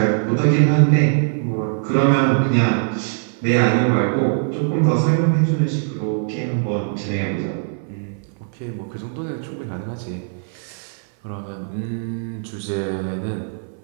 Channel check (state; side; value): silent; left; 58 dB below the other